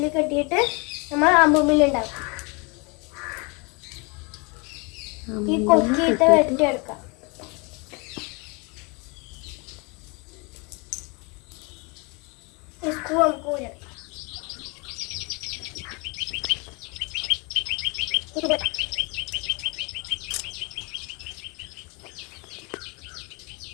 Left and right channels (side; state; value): right; quieter; 30.1 dB